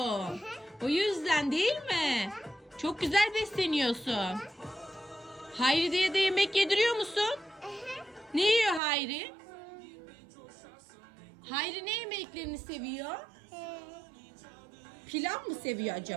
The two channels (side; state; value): left; drops out; at 8.8 s